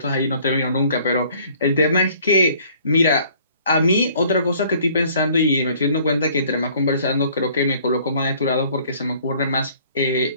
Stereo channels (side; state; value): both; inverted; correlation -0.57